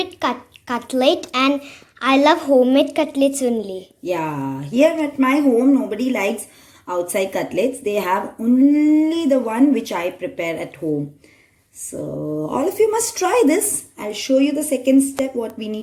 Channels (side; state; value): both; identical; correlation 1.00